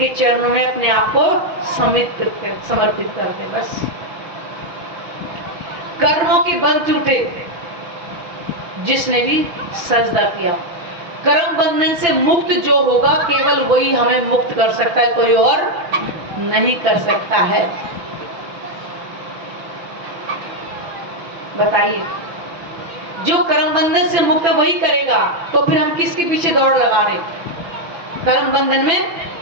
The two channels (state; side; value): late; left; 5.9 ms